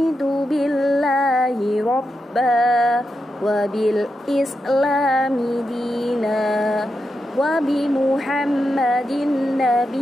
billahi rabba wa bil islami dina wa bi muhammadin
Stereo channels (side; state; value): both; normal; correlation 0.87